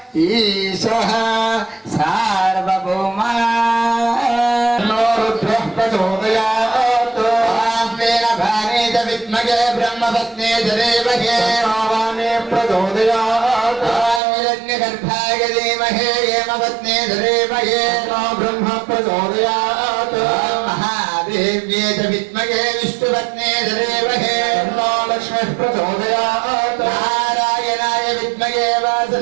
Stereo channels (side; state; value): left; drops out; at 14.2 s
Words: ఈశః సార్వభౌమా రుద్రః ప్రచోదయాత్ ఆస్మేన భానే చ విద్మగే బ్రహ్మపత్నే ధరేమహే భావానే ప్రచోదయాత్ హిరణ్యగర్భాయ ధీమహే హేమపత్నే ధరేమహే బ్రహ్మ ప్రచోదయాత్ మహాదేవ్యే చ విద్మగే విష్ణుపత్నే ధరేమహే లక్ష్మీః ప్రచోదయాత్ నారాయణాయ విద్మగే